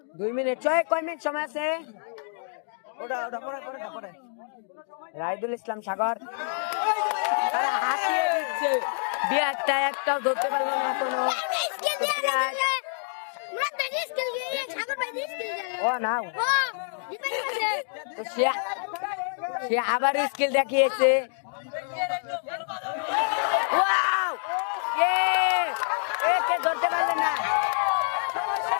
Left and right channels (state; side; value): silent; right; 60 dB below the other